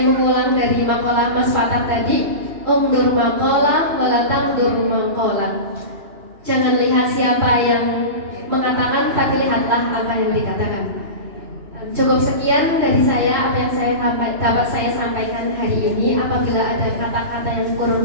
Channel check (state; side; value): late; left; 2.9 ms